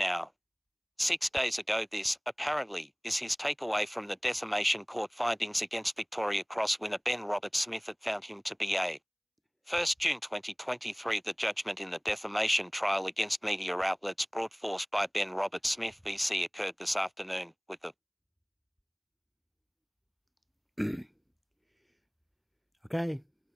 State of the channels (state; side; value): identical; both; correlation 1.00